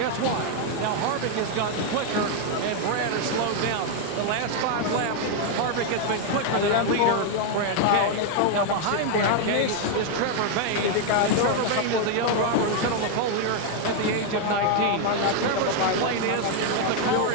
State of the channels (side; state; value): both; different; correlation 0.01